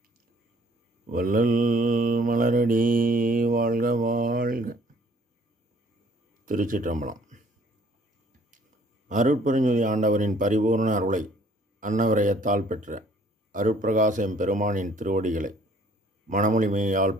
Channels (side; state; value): both; normal; correlation 0.59